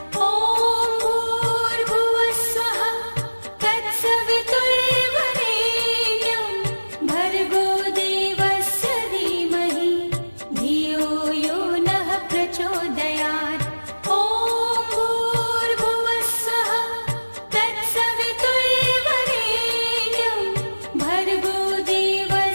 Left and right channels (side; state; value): both; inverted; correlation -1.00